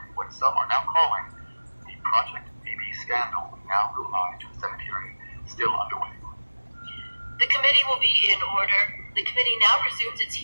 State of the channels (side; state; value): both; inverted; correlation -1.00